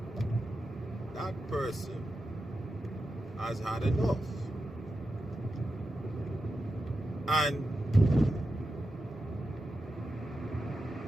that person has had enough. And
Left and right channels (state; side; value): normal; both; correlation 0.90